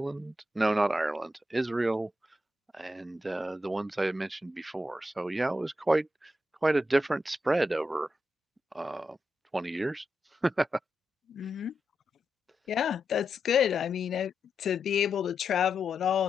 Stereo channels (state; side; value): normal; both; correlation 0.86